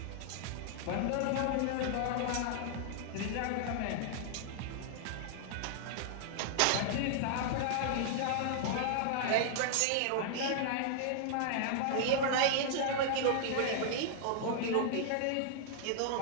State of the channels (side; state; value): both; different; correlation -0.01